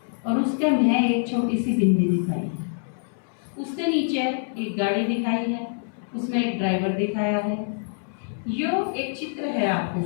और उसके में एक छोटी सी बिंदी दिखाई है। उसके नीचे एक गाड़ी दिखाई है, उसमें एक ड्राइवर दिखाया है। यो एक चित्र है आपके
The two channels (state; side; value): silent; right; 62 dB below the other